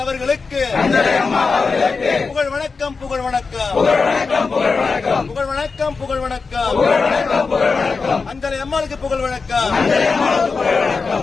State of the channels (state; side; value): quieter; right; 4.6 dB